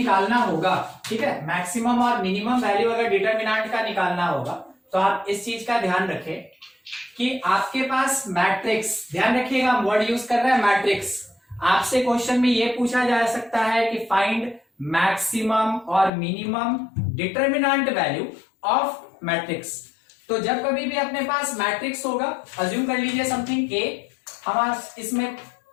होगा, ठीक है, मैक्सिमम और मिनिमम वैल्यू अगर डिटरमिनेंट का निकालना होगा तो आप इस चीज का ध्यान रखें कि आपके पास मैट्रिक्स, ध्यान रखिएगा हम वर्ड यूज कर रहे हैं मैट्रिक्स। आपसे क्वेश्चन में यह पूछा जा सकता है कि फाइंड मैक्सिमम और minimum determinant value of matrix. तो जब कभी भी अपने पास मैट्रिक्स होगा, अज्यूम कर लीजिए समथिंग ए, हम इसमें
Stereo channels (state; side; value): drops out; right; at 16.1 s